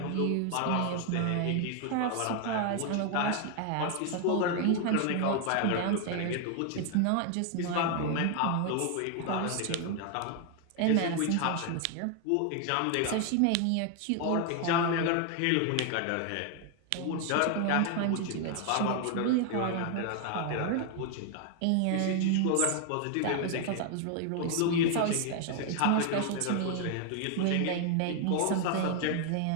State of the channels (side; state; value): both; different; correlation 0.00